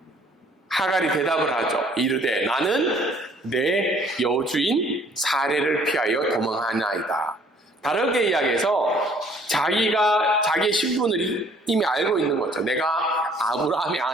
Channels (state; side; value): normal; both; correlation 0.59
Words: 하갈이 대답을 하죠. 이르되 나는 내 여주인 사례를 피하여 도망하나이다. 다르게 이야기해서 자기의 신분을 이미 알고 있는 거죠. 내가 아브라함의